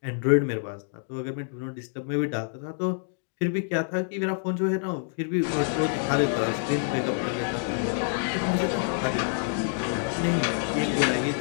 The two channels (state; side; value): silent; right; digital silence